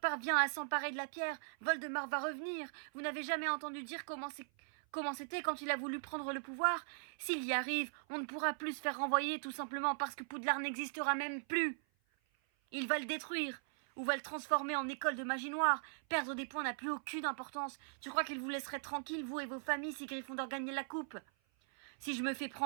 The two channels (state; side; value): silent; left; 51 dB below the other